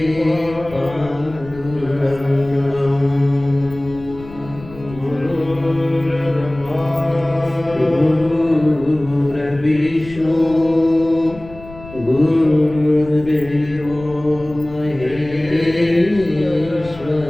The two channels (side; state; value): left; noise; rumble, 17 dB below the sound